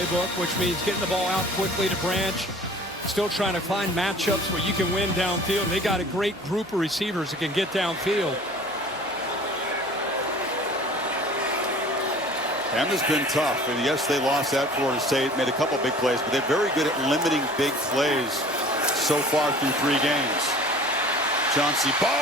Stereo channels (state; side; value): noise; left; hum, 27 dB below the sound